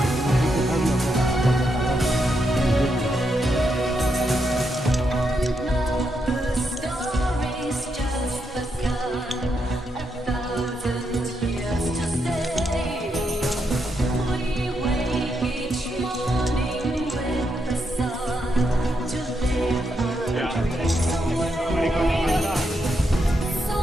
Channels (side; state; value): both; normal; correlation 0.81